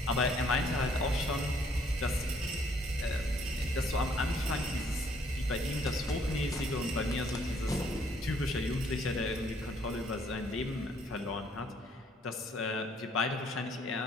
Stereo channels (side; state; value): both; normal; correlation 0.65